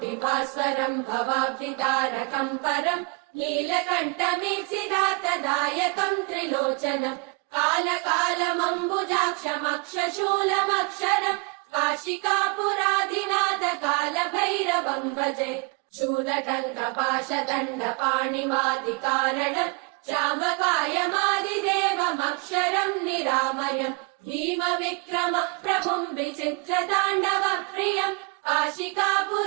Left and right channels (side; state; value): left; quieter; 31.1 dB